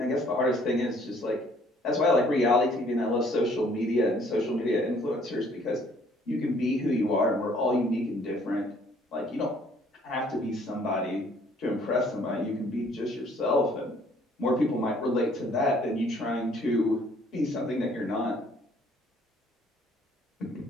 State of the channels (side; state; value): both; normal; correlation 0.60